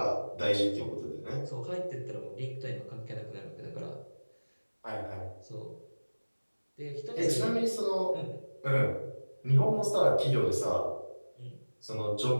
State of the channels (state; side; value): inverted; both; correlation -1.00